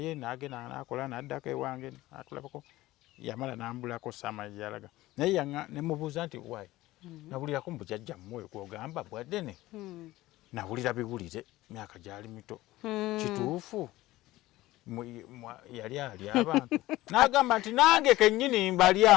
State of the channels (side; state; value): right; quieter; 17.3 dB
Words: nagenda nakola naddako ewange natulabako yamala nambulako saama gyeyalaga naye nemubuuza nti wayi nabulirako mubujjajja mmwe gwogamba Bwaddene nawulira biwulire myaka gyali mito kituufu yali alya abantu n'agamba nti nange kennyini